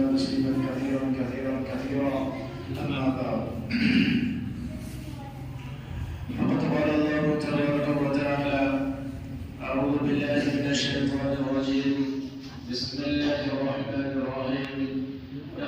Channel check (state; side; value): identical; both; correlation 1.00